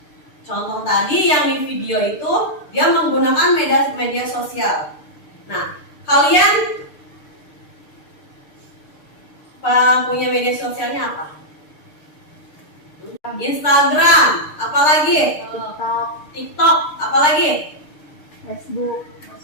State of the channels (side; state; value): right; late; 6.6 ms